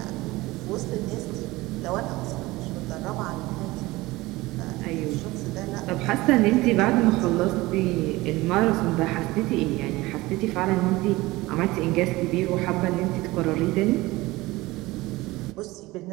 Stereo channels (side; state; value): left; quieter; 20.0 dB